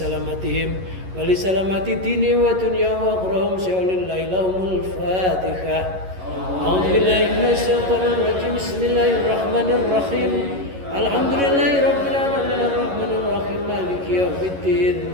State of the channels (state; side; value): late; left; 11 ms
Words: ولسلامة دينهم ودنياهم وأخراهم سيولله لهم الفاتحة. أعوذ بالله من الشيطان الرجيم. بسم الله الرحمن الرحيم. الحمد لله رب العالمين الرحمن الرحيم مالك يوم الدين.